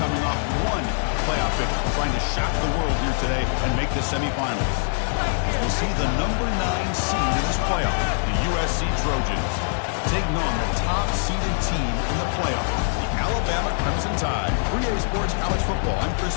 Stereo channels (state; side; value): silent; right; digital silence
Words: off one playoff victory, trying to shock the world here today and make the semifinals. As we'll see the number 9 seed in this playoff, the USC Trojans, taking on the top-seeded team in the playoff, the Alabama Crimson Tide. 3A Sports College Football. I'm Chris